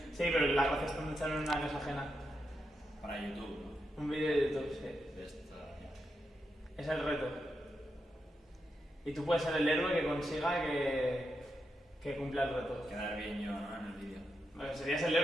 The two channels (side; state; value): both; normal; correlation 0.85